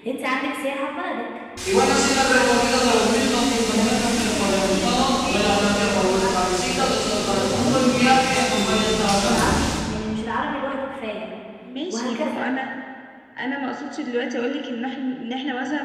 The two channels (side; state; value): both; identical; correlation 1.00